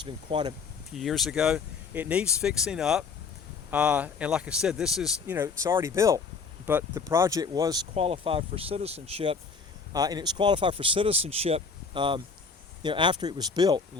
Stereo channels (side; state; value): right; quieter; 5.2 dB